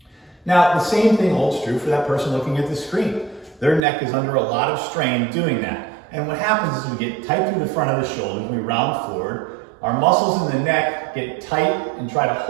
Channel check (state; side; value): drops out; left; at 3.8 s